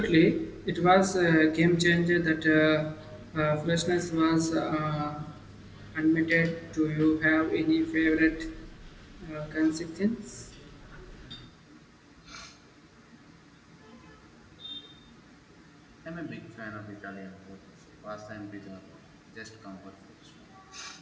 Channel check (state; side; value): identical; both; correlation 1.00